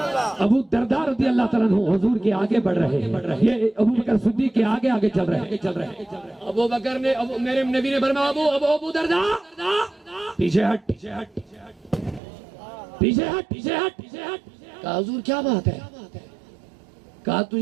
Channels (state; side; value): drops out; left; at 12.2 s